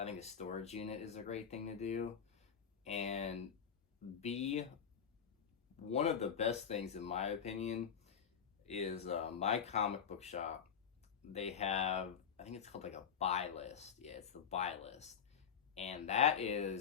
think a storage unit is a great thing to do. And B, one of the best things, in my opinion, is my comic book shop. They have, I think it's called like a buy list. Yeah, it's the buy list. And that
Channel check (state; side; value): quieter; right; 7.5 dB